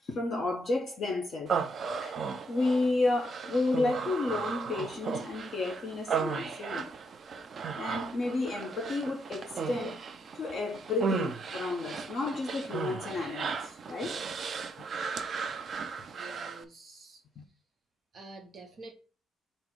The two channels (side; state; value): both; normal; correlation 0.76